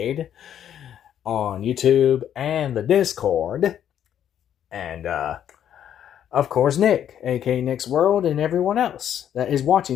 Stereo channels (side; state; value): right; quieter; 9.9 dB